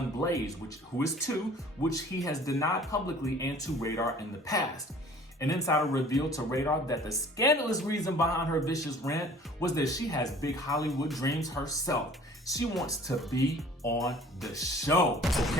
Blaze, who is 2, which he has denied publicly and to Radar in the past. An insider revealed to Radar that the scandalous reason behind her vicious rant was that she has big Hollywood dreams herself. She wants to be on the show,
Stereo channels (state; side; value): normal; both; correlation 0.50